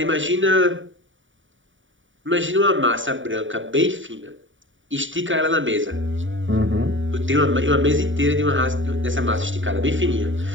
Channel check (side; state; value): left; late; 0.56 ms